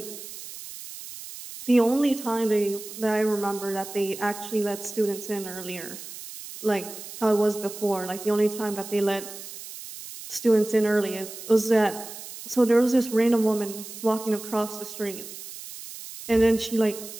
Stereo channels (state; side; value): noise; right; hiss, 12 dB below the sound